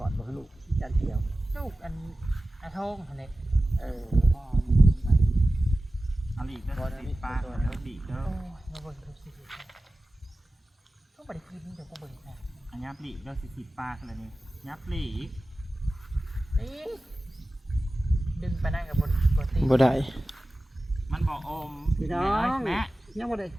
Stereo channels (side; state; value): both; normal; correlation 0.96